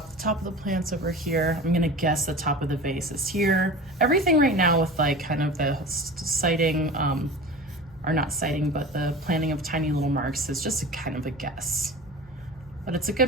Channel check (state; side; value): normal; both; correlation 0.35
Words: of the plant's over here. I'm gonna guess the top of the vase is here. Everything right now with like kind of the sighting, or not sighting, but the planning of tiny little marks is just a kind of a guess. But it's a